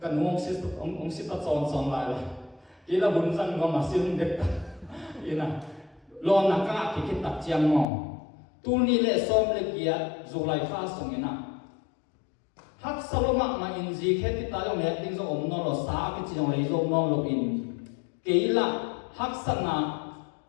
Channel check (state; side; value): drops out; right; at 7.9 s